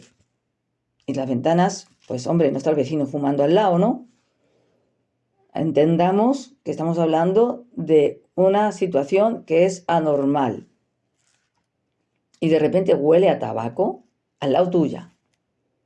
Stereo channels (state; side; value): identical; both; correlation 1.00